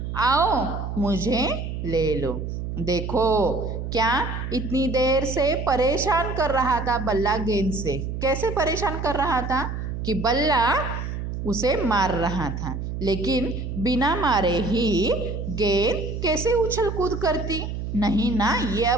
आओ मुझे ले लो। देखो क्या इतनी देर से परेशान कर रहा था बल्ला गेंद से, कैसे परेशान कर रहा था कि बल्ला उसे मार रहा था, लेकिन बिना मारे ही गेंद कैसे उछल कूद करती, नहीं ना। ये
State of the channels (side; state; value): right; noise; hum, 5 dB below the sound